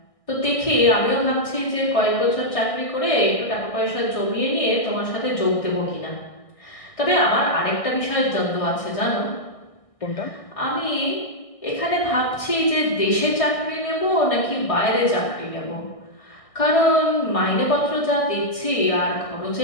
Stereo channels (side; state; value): right; late; 1.6 ms